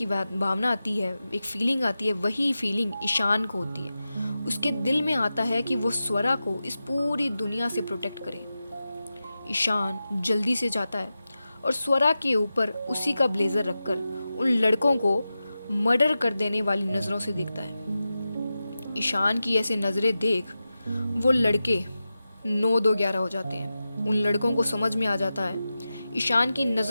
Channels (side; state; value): both; inverted; correlation -0.93